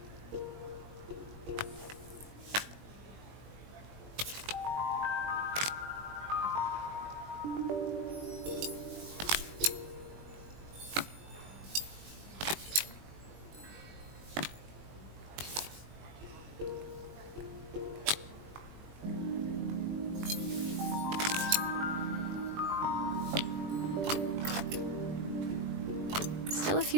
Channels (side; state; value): left; late; 20 ms